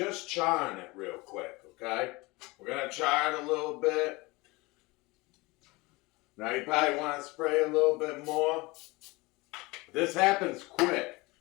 charring it real quick, okay? We're going to char it a little bit. Now, you probably want to spray a little bit more. This happens quick.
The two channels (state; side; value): quieter; right; 23.3 dB